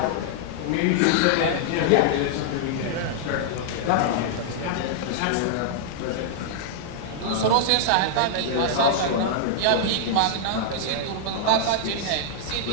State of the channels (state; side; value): different; both; correlation -0.01